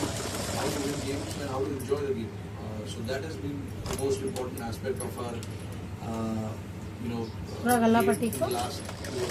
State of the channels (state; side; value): identical; both; correlation 1.00